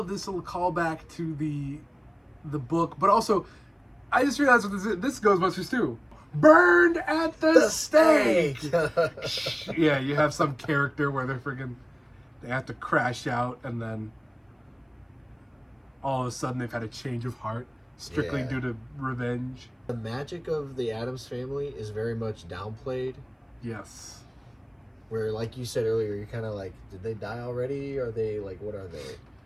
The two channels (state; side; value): identical; both; correlation 1.00